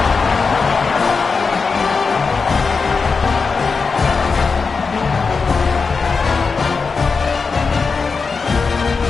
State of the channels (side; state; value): right; quieter; 4.8 dB